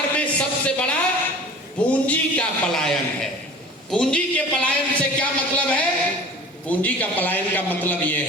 में सबसे बड़ा पूंजी का पलायन है। पूंजी के पलायन से क्या मतलब है? पूंजी का पलायन का मतलब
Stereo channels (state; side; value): normal; both; correlation 0.42